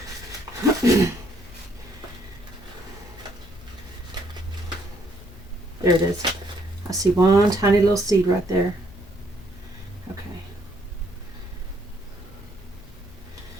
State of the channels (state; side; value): noise; left; hum, 22 dB below the sound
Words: There it is. I see one tiny little seed right there. Okay.